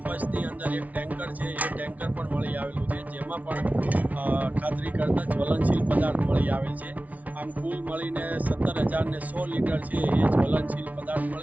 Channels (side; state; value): left; late; 0.072 ms